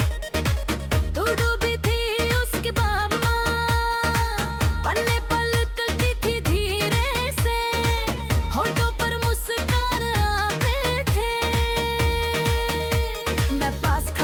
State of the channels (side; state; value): both; identical; correlation 1.00